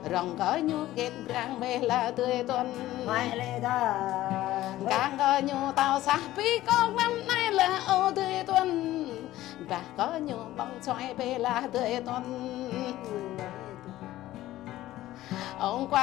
rồng có nhô kết răng bê là tươi tuần càng có nhô tàu xa bí con năm nay là ô tươi tuần và có nhô bóng xoay bê là tươi tuần ông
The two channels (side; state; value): right; quieter; 15.2 dB